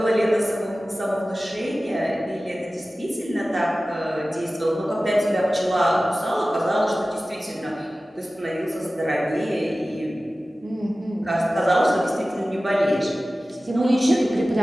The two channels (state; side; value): normal; both; correlation 0.96